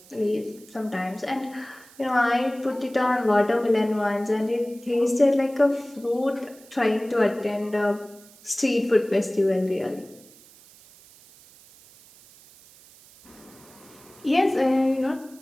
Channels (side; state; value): right; noise; hiss, 24 dB below the sound